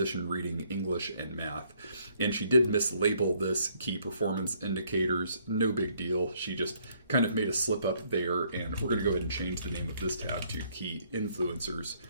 reading, English, and math. And she did mislabel this key performance indicators. No big deal. She just kind of made a slip up there, and we're going to go ahead and change the name of this tab to key influencers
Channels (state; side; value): inverted; both; correlation -0.67